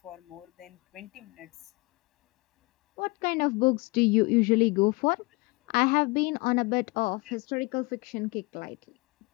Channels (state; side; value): quieter; right; 25.4 dB